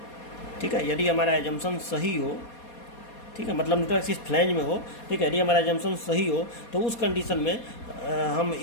ठीक है, यदि हमारा एजम्पशन सही हो, ठीक है, मतलब न्यूट्रल एक्सिस फ्लैंज में हो, ठीक है, यदि हमारा एजम्पशन सही हो तो उस कंडीशन में हम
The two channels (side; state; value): right; late; 4.2 ms